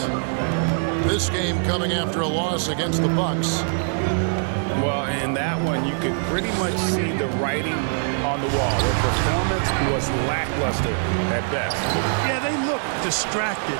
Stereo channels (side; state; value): left; silent; 63 dB below the other